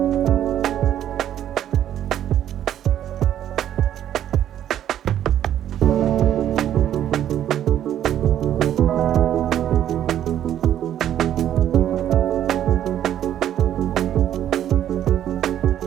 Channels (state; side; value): quieter; left; 11.0 dB